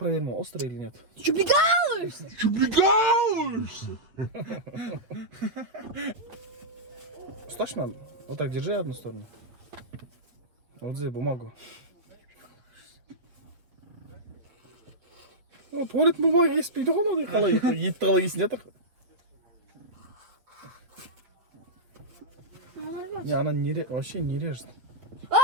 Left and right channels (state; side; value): late; left; 8.3 ms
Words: острый или нет. Ты что, прикалываешься? Точно? Вот так держи одну сторону. Вот здесь бумагу. Туалет бумаги еспейді ғой, мынандай қалай, етті қалай есін жатыр. Не, она вообще не режет.